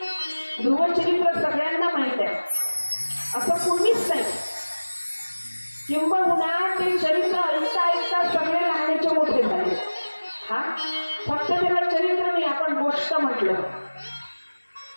ध्रुवचरित्र सगळ्यांना माहित आहे, असं कोणीच नाही. किंबहुना ते चरित्र ऐकता ऐकता सगळे लहानाचे मोठे झाले. हा, फक्त त्याला चरित्र नाही, आपण गोष्ट म्हटलं.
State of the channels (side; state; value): both; inverted; correlation -1.00